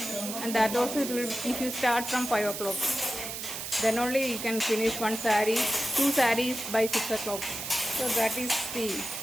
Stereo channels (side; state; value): right; noise; hiss, 6 dB below the sound